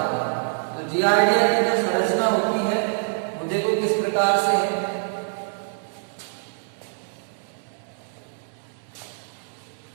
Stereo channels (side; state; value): left; silent; 62 dB below the other